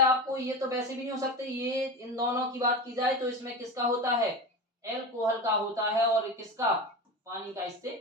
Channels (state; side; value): normal; both; correlation 0.25